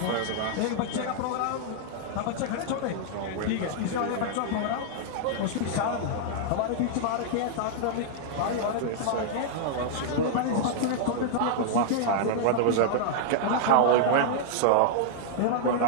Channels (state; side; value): different; both; correlation -0.01